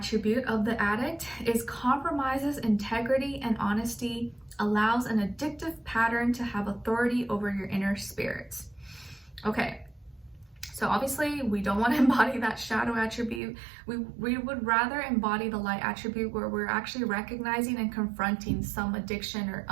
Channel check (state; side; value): drops out; left; at 13.4 s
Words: of the addict is compromises integrity and honesty, allows an addictive pattern to have authority over your inner spirits. Okay. So obviously we don't want to embody that shadow attribute. We would rather embody the light attribute, where we're actually recognizing and confronting some addiction or